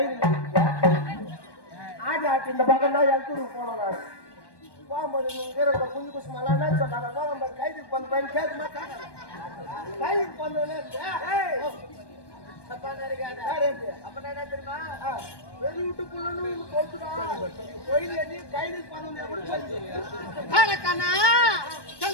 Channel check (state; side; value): late; right; 1.2 ms